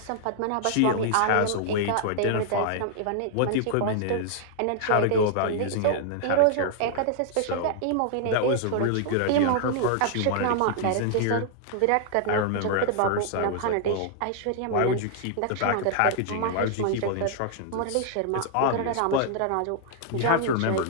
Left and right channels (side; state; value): both; different; correlation 0.00